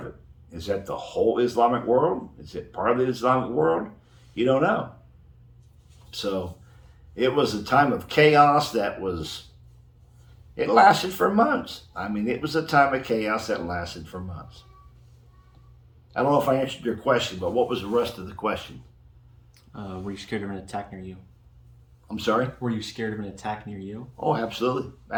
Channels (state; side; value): identical; both; correlation 1.00